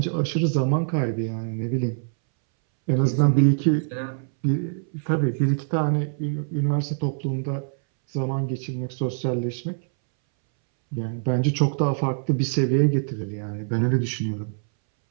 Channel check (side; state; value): left; silent; 62 dB below the other